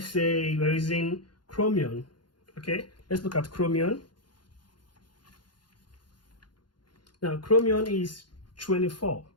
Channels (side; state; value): right; late; 0.71 ms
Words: say we're using chromium. Okay, let's look at chromium. Now chromium is 24.